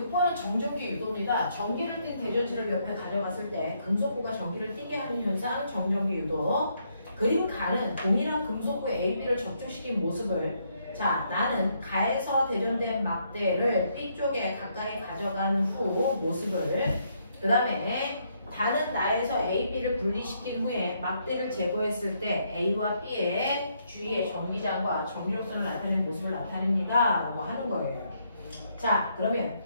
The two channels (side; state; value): both; inverted; correlation -0.74